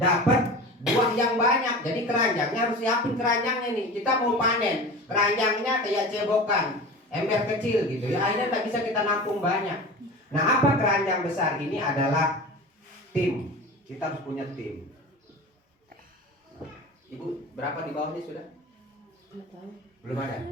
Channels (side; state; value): both; normal; correlation 0.34